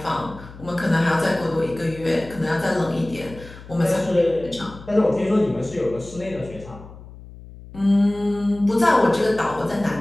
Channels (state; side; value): noise; left; hum, 17 dB below the sound